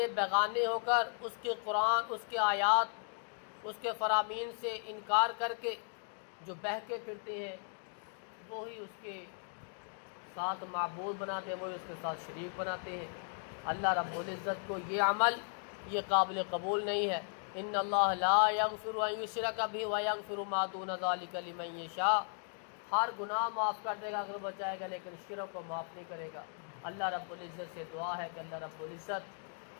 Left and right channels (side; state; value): right; silent; 54 dB below the other